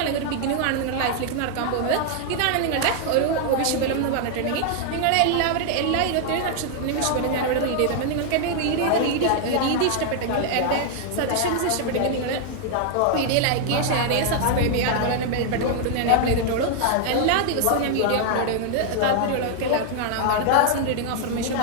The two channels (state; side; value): different; both; correlation 0.00